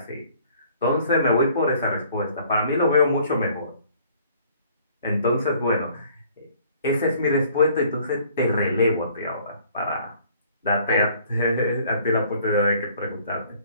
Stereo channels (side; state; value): both; inverted; correlation -0.57